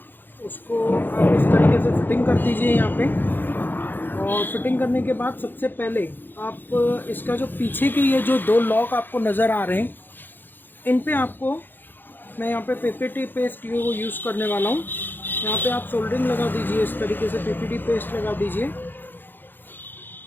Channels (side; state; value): right; late; 0.094 ms